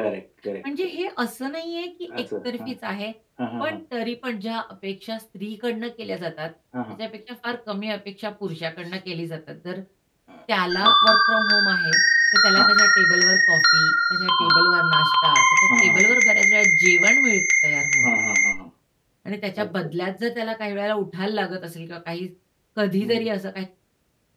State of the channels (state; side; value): identical; both; correlation 1.00